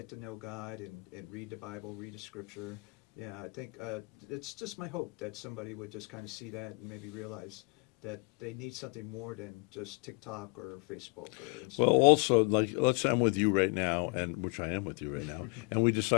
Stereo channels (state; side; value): quieter; right; 32.8 dB